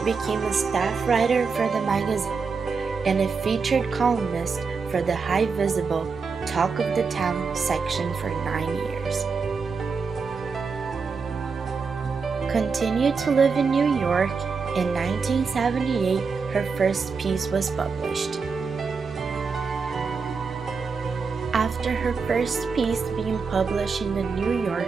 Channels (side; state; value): left; quieter; 5.1 dB